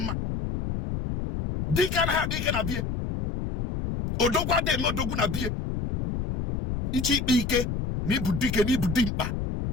Dịka na ha dịka na bie. Odogwu adịghị eme odogwu na bie. Ichi ikpe ike na ibu dike na ibu dimkpa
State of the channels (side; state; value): left; noise; rumble, 3 dB below the sound